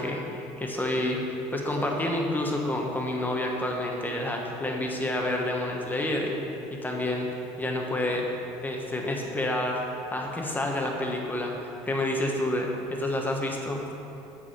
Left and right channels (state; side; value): normal; both; correlation 0.60